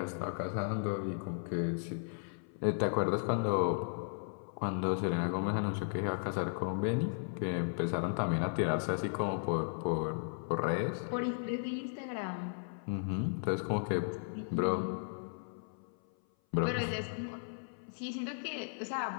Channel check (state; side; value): silent; right; 54 dB below the other